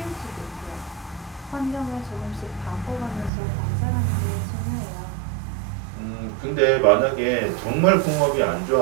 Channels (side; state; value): left; drops out; at 3.3 s